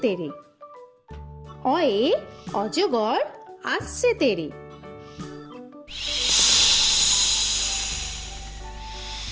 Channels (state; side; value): identical; both; correlation 1.00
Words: তেরে। অয়ে অজগর আসছে তেরে।